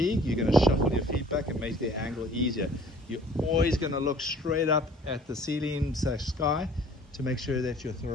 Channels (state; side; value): normal; both; correlation 0.53